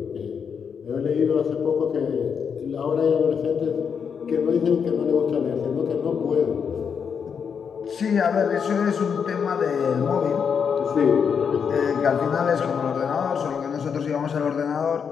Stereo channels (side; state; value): right; quieter; 6.7 dB